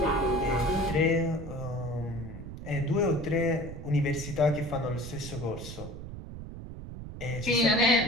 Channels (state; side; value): noise; right; rumble, 10 dB below the sound